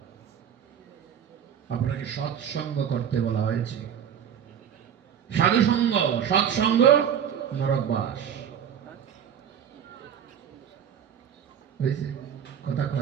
আপনাকে সৎসঙ্গ করতে বলা হয়েছে সাধু সঙ্গ সৎসঙ্গ নরকবাস হয়েছে কথা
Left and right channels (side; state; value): left; quieter; 8.8 dB